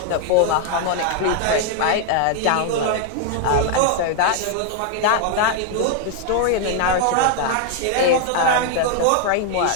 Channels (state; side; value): different; both; correlation 0.00